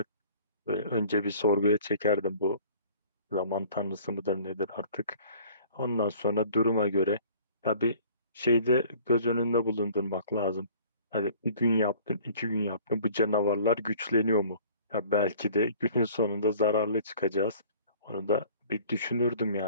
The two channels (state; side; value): inverted; both; correlation -0.50